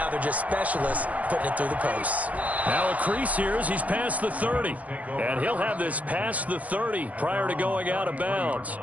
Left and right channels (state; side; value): late; left; 0.071 ms